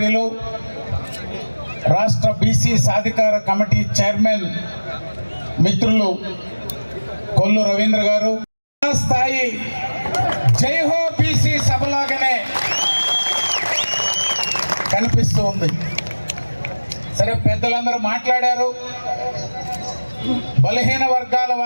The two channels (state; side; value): inverted; both; correlation -1.00